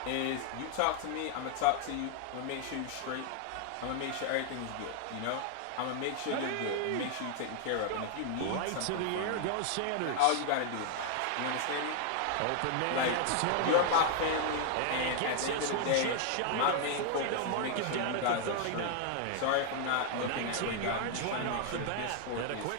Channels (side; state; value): both; different; correlation 0.00